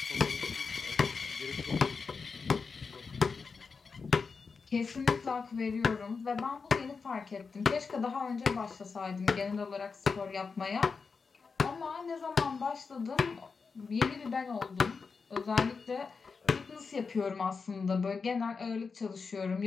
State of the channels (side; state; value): right; quieter; 5.0 dB